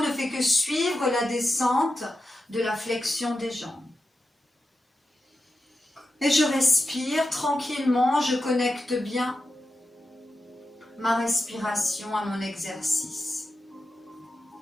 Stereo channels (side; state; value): both; normal; correlation 0.90